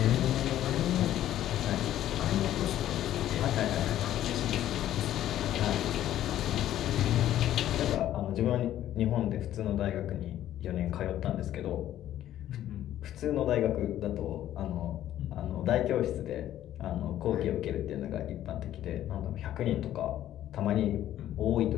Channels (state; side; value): quieter; right; 12.4 dB